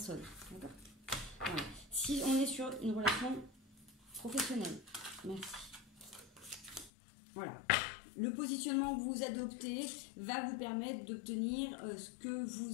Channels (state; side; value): drops out; right; at 6.9 s